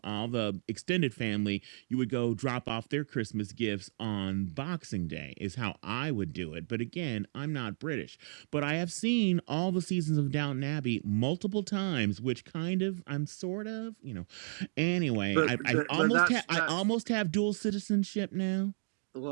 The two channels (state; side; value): silent; left; digital silence